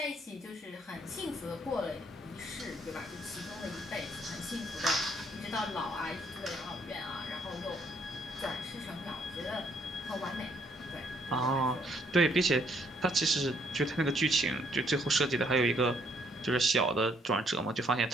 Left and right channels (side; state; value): both; normal; correlation 0.68